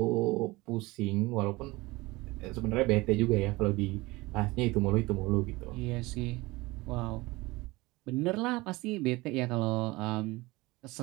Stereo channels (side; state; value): left; quieter; 21.6 dB